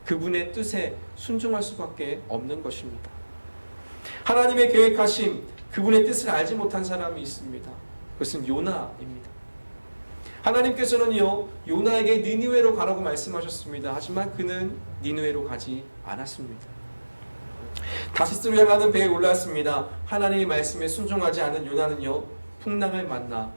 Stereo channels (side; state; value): both; inverted; correlation -1.00